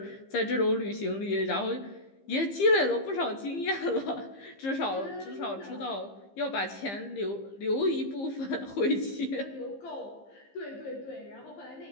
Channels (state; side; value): late; right; 15 ms